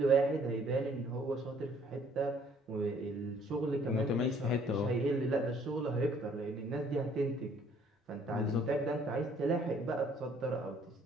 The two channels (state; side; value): normal; both; correlation 0.61